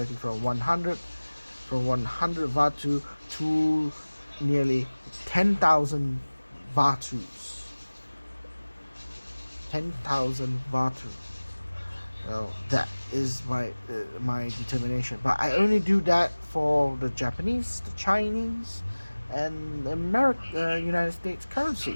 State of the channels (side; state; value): both; inverted; correlation -1.00